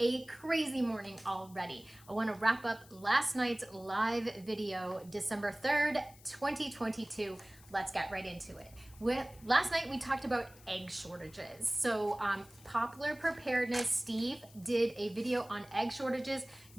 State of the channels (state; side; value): noise; left; hiss, 23 dB below the sound